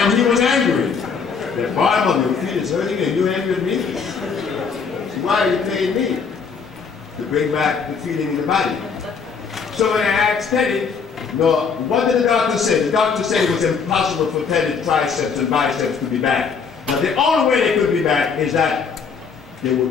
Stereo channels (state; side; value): quieter; right; 5.7 dB